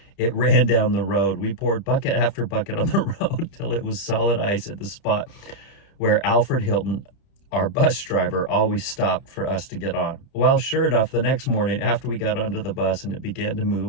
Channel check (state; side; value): late; right; 30 ms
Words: it ran down the road. We poured bucket after bucket on the road till it was solid ice at the spot where Alfred Hilton, our bus driver, always stopped for us to get on. Well, sure enough, the next morning after we got onto the bus and it began to